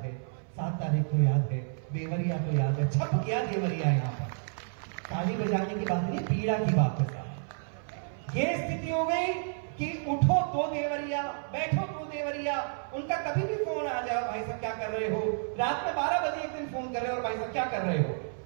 है, 7 तारीख को याद है, देवरिया तो याद है। छप गया देवरिया यहाँ पर। ताली बजाने की बात नहीं, पीड़ा की बात है साहब। ये स्थिति हो गई कि उठो तो देवरिया, बैठो तो देवरिया। उनका कभी भी फोन आ जाए, भाई साहब क्या कर रहे हो, रात में 12 बजे एक दिन फोन कर रहे हो, और भाई साहब क्या कर रहे हो।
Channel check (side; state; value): left; silent; 57 dB below the other